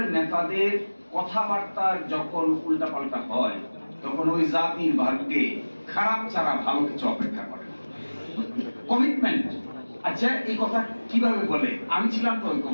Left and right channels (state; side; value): inverted; both; correlation -1.00